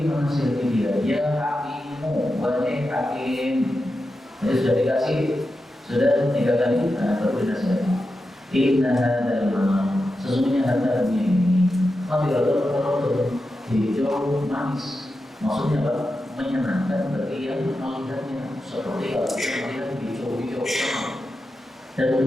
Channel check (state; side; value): normal; both; correlation 0.90